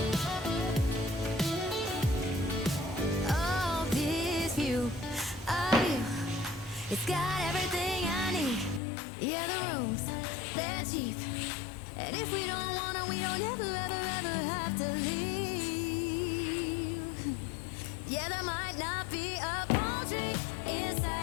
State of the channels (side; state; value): right; drops out; at 8.8 s